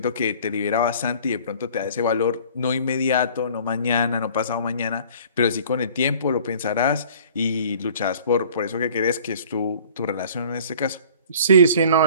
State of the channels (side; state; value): both; inverted; correlation -0.50